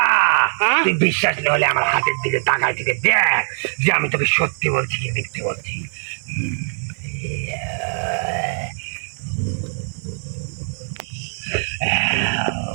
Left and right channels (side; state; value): left; silent; digital silence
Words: তুই বিশ্বাস না হলে আমার হাতের দিকে তাকায় থেকে দেখ যে আমি তোকে সত্যি বলছি কি মিথ্যে বলছি।